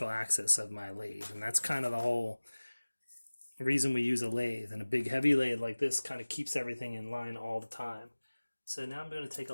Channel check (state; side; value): inverted; both; correlation -1.00